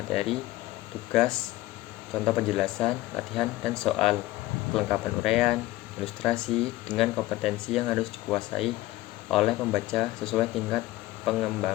tugas, contoh penjelasan, latihan, dan soal, kelengkapan uraian, ilustrasi, dengan kompetensi yang harus dikuasai oleh pembaca sesuai tingkat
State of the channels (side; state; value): right; quieter; 17.4 dB